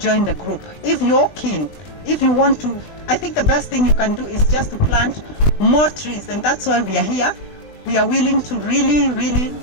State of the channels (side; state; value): right; late; 20 ms